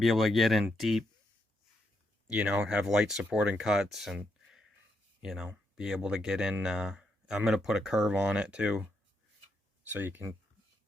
able to get in deep, have light supporting cuts and, be able to get in. I'm going to put a curve on it too, so you can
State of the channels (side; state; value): both; normal; correlation 0.80